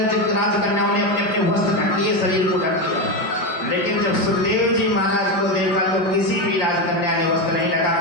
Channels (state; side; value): late; right; 5.7 ms